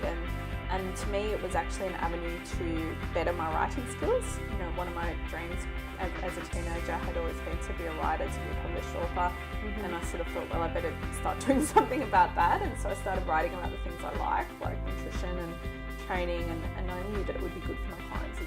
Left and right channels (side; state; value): both; identical; correlation 1.00